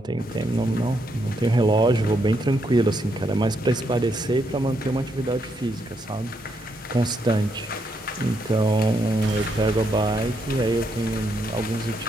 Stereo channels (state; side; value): normal; both; correlation 0.77